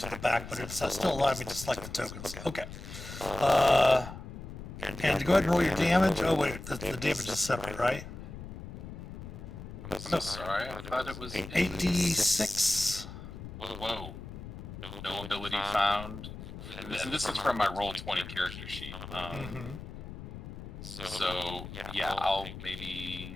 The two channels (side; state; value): left; noise; rumble, 11 dB below the sound